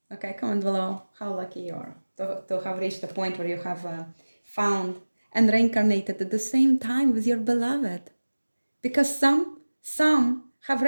Okay, comment below how lucky you are to have reached the point where you have found and reincarnated at the same time with your beloved. Because some have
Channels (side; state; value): both; inverted; correlation -1.00